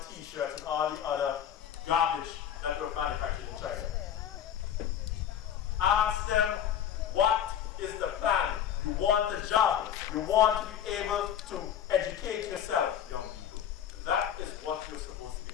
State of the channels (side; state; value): right; quieter; 9.7 dB